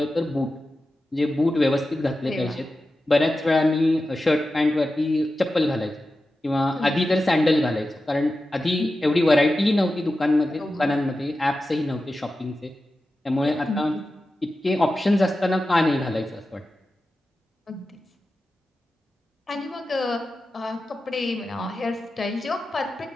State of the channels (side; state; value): both; normal; correlation 0.92